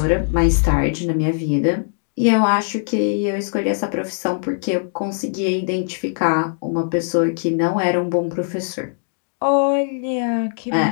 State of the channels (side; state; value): right; silent; digital silence